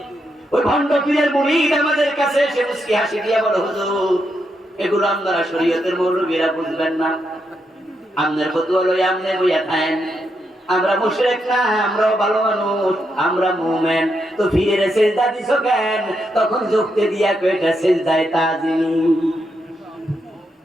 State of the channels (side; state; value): both; normal; correlation 0.82